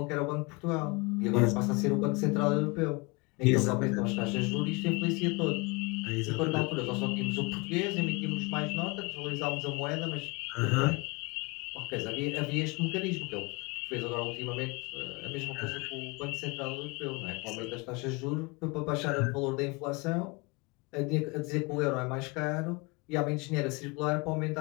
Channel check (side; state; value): right; quieter; 27.3 dB